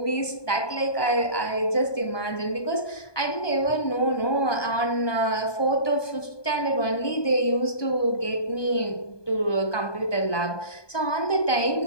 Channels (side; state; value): right; late; 1.2 ms